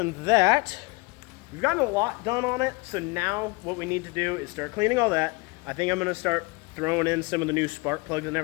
that, we've gotten a lot done on it, so now what we need to do is start cleaning all that. I think I'm going to start throwing in some of the new spark plugs and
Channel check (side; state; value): right; quieter; 26.6 dB